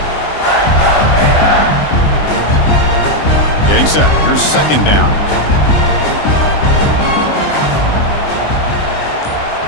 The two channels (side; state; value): right; late; 20 ms